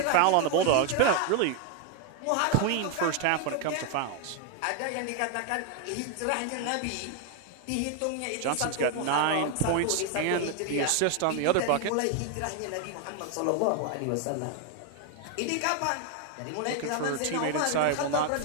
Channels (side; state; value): both; different; correlation 0.00